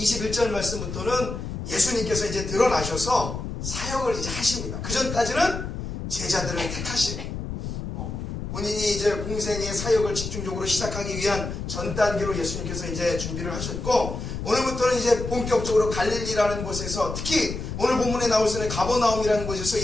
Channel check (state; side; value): noise; left; rumble, 6 dB below the sound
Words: 말씀부터는 예수님께서 이제 드러나셔서 사역을 이제 하십니다. 그 전까지는 제자들을 택하시고 본인이 이제 공생의 사역을 집중적으로 시작하기 위한 전 단계로 예수님께서 이제 준비를 하셨고 오늘부터는 이제 본격적으로 갈릴리라는 곳에서 특히 오늘 본문에 나올 수 있는 가버나움이라는 곳에서